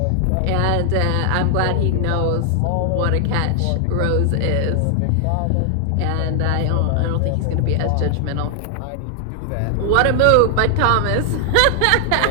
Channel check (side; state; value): both; different; correlation 0.00